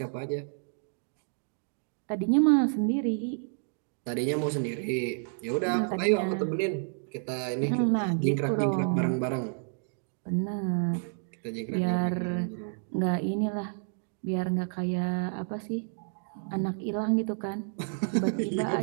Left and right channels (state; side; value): silent; left; digital silence